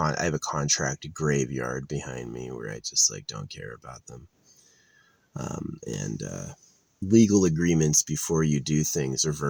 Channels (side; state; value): both; identical; correlation 1.00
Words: a contract graveyard behind me where I just like don't care about them. And legal agreements before you do things, or